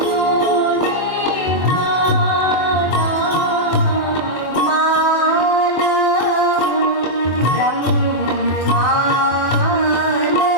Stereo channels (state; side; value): late; right; 24 ms